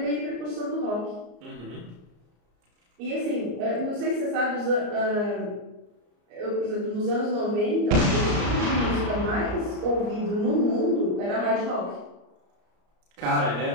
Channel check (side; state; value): left; late; 34 ms